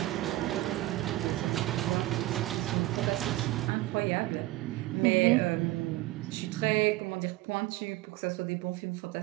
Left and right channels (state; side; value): quieter; left; 17.8 dB